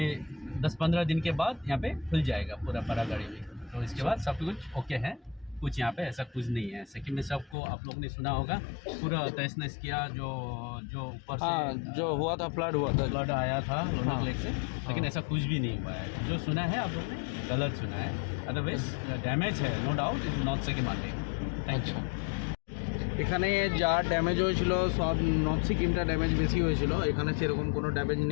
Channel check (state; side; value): drops out; right; at 7.6 s